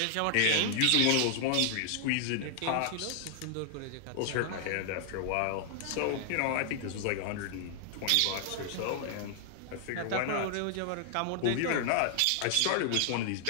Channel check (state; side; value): different; both; correlation 0.00